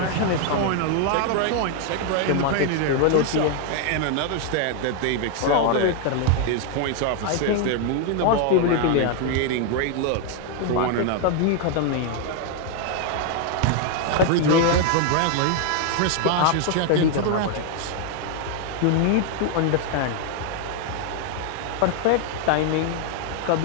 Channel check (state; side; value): different; both; correlation 0.00